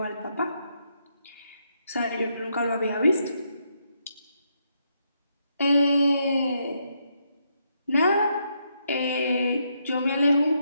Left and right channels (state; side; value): inverted; both; correlation -0.78